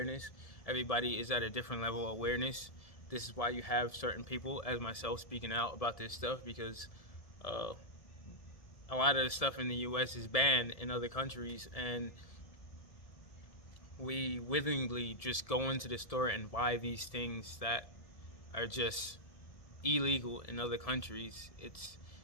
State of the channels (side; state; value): right; late; 1.7 ms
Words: Everybody is at a different level of awareness. This is why you have certain people, as myself, speaking out about this stuff, because a lot of the stuff in the U.S. is banned in other countries, and we willingly just go into the store and buy these things that are just illegal in other countries.